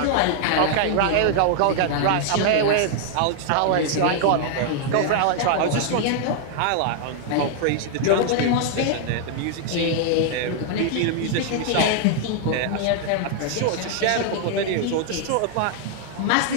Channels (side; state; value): both; different; correlation 0.00